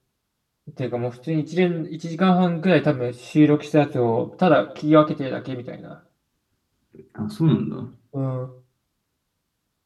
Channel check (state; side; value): identical; both; correlation 1.00